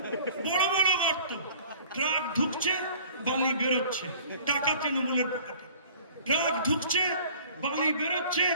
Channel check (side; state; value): both; inverted; correlation -0.48